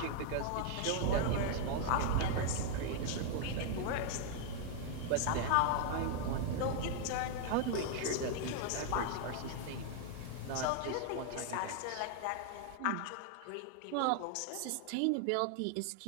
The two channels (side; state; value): both; different; correlation 0.00